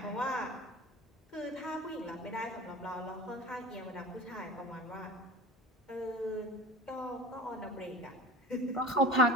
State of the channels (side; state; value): both; normal; correlation 0.35